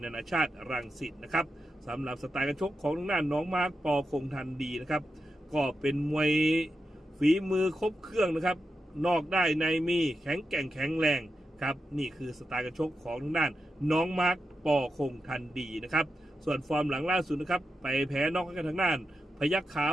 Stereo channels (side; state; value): both; normal; correlation 0.88